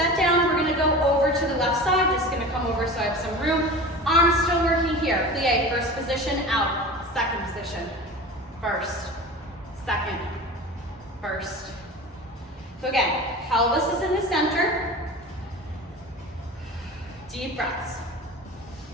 down. We're gonna go over to the left side. Just gonna come over so I have some room. Arms still working here. Plie, first position, out. Second position, first, second, first. So again, pelvis is in the center. Deep breaths.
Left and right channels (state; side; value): normal; both; correlation 0.34